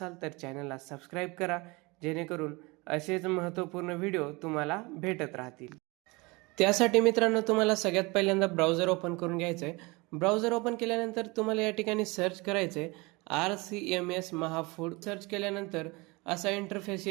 तर चॅनलला सबस्क्राईब करा, जेणेकरून असेच महत्त्वपूर्ण व्हिडिओ तुम्हाला भेटत राहतील. त्यासाठी मित्रांनो तुम्हाला सगळ्यात पहिल्यांदा ब्राउझर ओपन करून घ्यायचं आहे. ब्राउझर ओपन केल्यानंतर तुम्हाला या ठिकाणी सर्च करायचं आहे RCMS महाफूड. सर्च केल्यानंतर असा इंटरफेस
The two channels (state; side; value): quieter; left; 25.2 dB